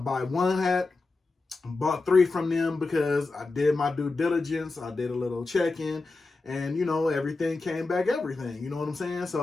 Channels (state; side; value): quieter; right; 3.6 dB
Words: one hat, bought 3 from them because I did my due diligence. I did a little check-in and, everything came back everything. You know what I'm saying?